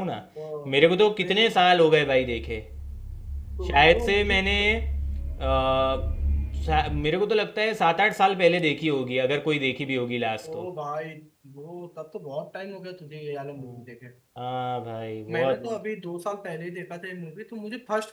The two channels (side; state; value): both; identical; correlation 1.00